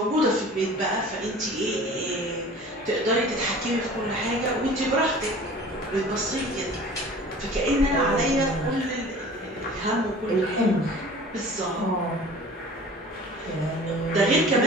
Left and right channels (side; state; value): both; normal; correlation 0.44